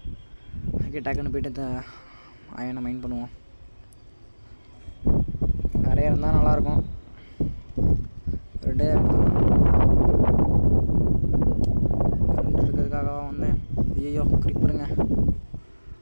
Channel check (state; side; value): inverted; both; correlation -1.00